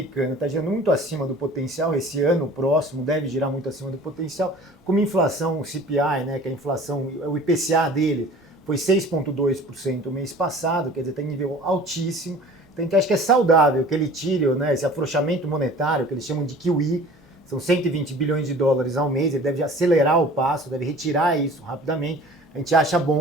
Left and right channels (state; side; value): normal; both; correlation 0.45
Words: está girando muito acima do potencial. Esse ano próximo deve girar muito acima do potencial. Como inflação, o CPI, né, que é a inflação, o IPCA dele, foi 6,2% o mês passado, quer dizer, está em nível altíssimo. Então a gente acha que é saudável que ele tire, né, esse afrouxamento monetário, que eles chamam de QE, são 120 bilhões de dólares ao mês, ele deve acelerar o passo, deve retirar isso rapidamente, a gente acha